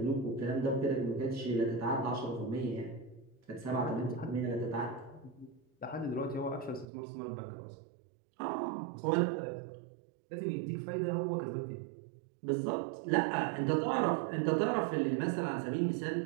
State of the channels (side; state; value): left; drops out; at 6.9 s